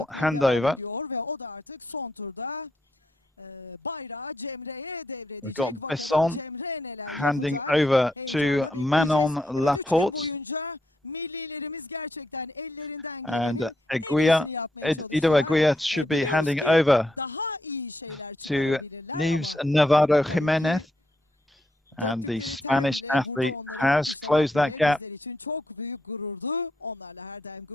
handover. Ve o da artık son turda bayrağı Cemre'ye devredecek. We've got Besson handing over to Manon Laporte. Millilerimiz gerçekten ellerinden and Ido Eguia should be handing over to Neves Navarro Jimenez. And the Spanish athlete has closed that gap. Çok büyük gururdu. Onlarla her daim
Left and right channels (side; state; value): both; normal; correlation 0.79